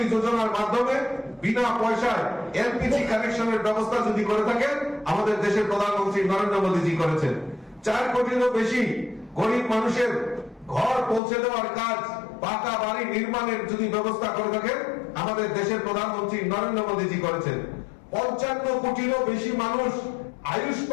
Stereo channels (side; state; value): right; drops out; at 11.2 s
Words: যোজনার মাধ্যমে বিনা পয়সায় এলপিজি কানেকশনের ব্যবস্থা যদি করে থাকেন আমাদের দেশের প্রধানমন্ত্রী নরেন্দ্র মোদীজি করেছেন। 4 কোটিরও বেশি গরিব মানুষের ঘর পৌঁছে দেওয়ার কাজ, পাকা বাড়ি নির্মাণের যদি ব্যবস্থা করে থাকেন আমাদের দেশের প্রধানমন্ত্রী নরেন্দ্র মোদীজি করেছেন। 55 কোটিরও বেশি মানুষ